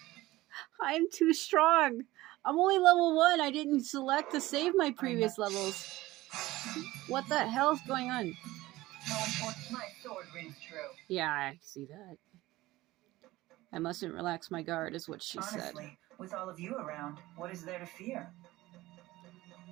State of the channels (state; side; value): quieter; left; 18.0 dB